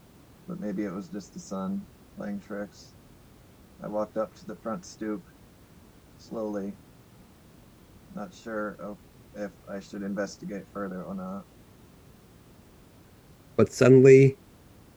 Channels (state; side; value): identical; both; correlation 1.00